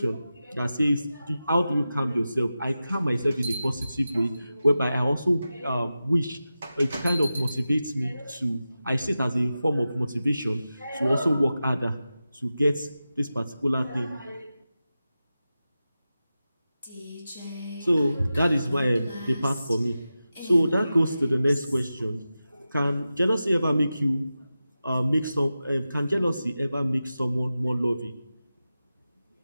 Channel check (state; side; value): inverted; both; correlation -0.93